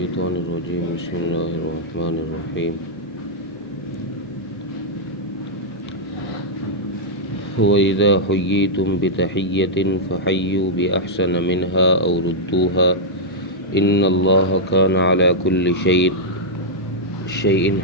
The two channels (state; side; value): normal; both; correlation -0.06